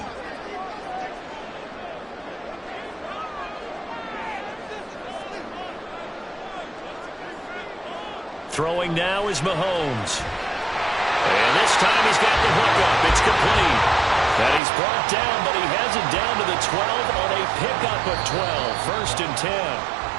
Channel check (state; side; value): drops out; left; at 14.6 s